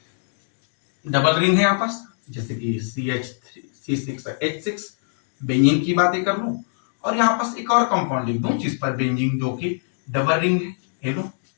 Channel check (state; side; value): silent; right; digital silence